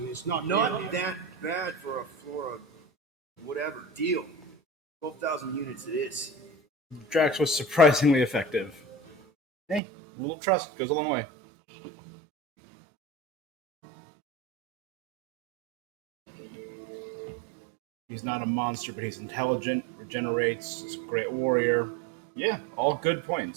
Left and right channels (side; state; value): left; drops out; at 9.8 s